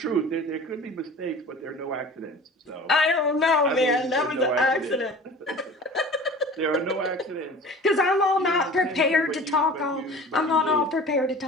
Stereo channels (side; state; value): both; normal; correlation 0.41